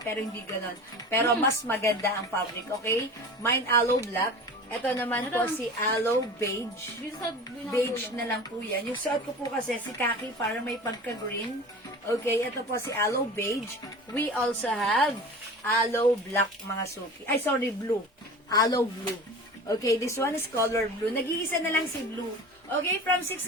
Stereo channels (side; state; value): both; normal; correlation 0.36